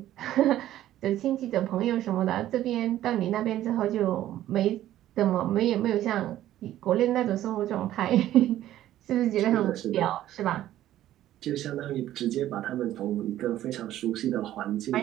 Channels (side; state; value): left; quieter; 13.2 dB